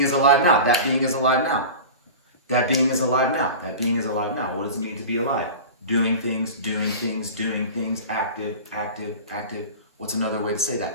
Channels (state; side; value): inverted; both; correlation -0.33